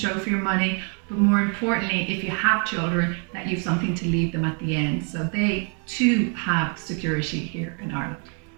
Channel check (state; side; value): quieter; left; 39.9 dB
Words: for your money, but more importantly, if you have children, that you've something to leave them at the end. So they too have security here in Ireland.